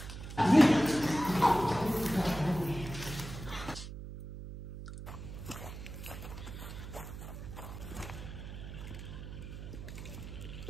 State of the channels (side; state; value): right; noise; hum, 10 dB below the sound